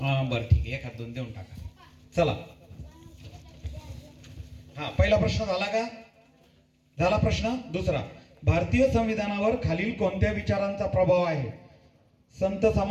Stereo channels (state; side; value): identical; both; correlation 1.00